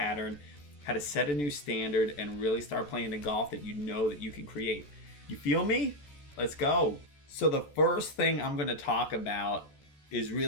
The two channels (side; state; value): right; late; 14 ms